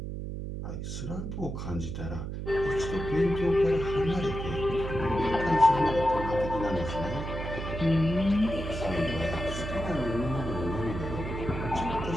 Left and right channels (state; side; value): noise; right; hum, 5 dB below the sound